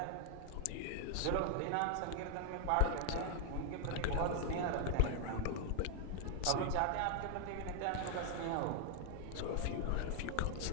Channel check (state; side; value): different; both; correlation 0.00